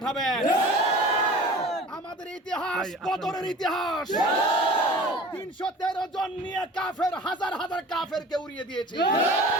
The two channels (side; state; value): both; normal; correlation 0.41